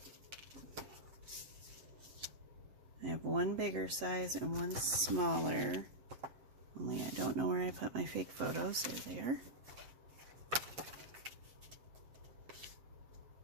I have one bigger size and one smaller, only I don't know where I put my fake photos. There they are.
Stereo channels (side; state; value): left; late; 7.9 ms